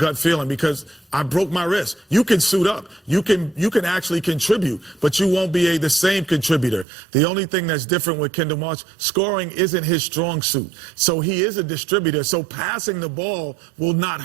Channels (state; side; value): drops out; left; at 6.9 s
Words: feeling because I broke my wrist. You can suit up. You can actually contribute, but you won't be the same contributor. The only thing that's different with Kendall Marshall, scoring isn't his strong suit. So he is a distributor. So passing the ball will not